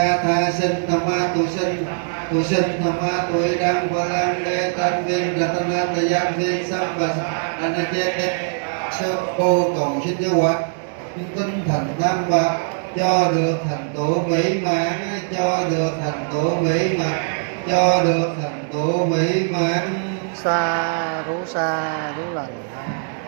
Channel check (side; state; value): left; silent; digital silence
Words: tha sinh tham ma tu sinh tham ma tu đăng và lan đê tân viên ratana tayan viên sam và anh chết sơ cô cầu xin cho quả tinh thành tam bạc cho được thành tựu mỹ mãn, cho được thành tựu mỹ mãn, cho được thành tựu mỹ mãn. Sa rú lành.